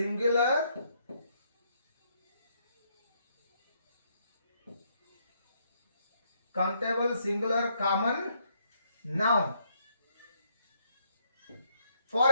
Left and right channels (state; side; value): inverted; both; correlation -0.72